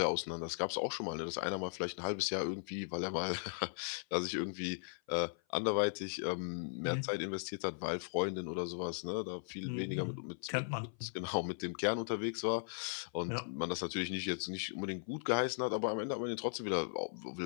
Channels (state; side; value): silent; right; 52 dB below the other